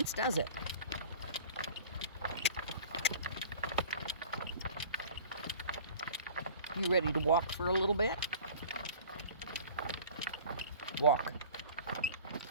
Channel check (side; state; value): both; inverted; correlation -0.43